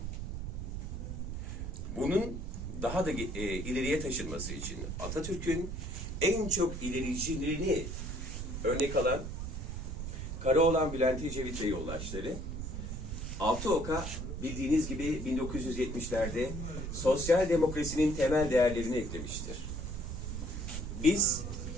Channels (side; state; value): right; noise; rumble, 5 dB below the sound